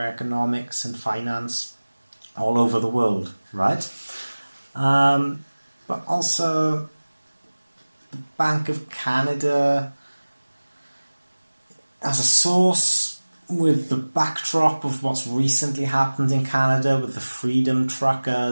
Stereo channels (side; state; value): both; inverted; correlation -1.00